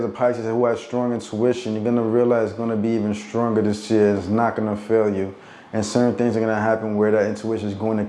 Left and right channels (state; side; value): identical; both; correlation 1.00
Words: a Pisces who has strong intuition, you're going to realize it's going to be even stronger this year. It's not going to fail you. And certain things are going to happen where that intuition is going to